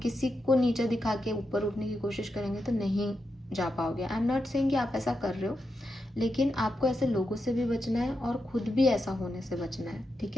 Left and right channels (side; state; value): both; normal; correlation 0.87